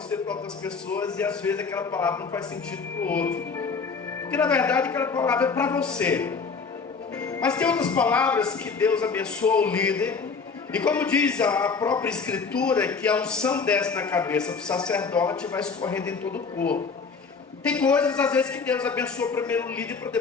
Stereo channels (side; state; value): right; quieter; 5.1 dB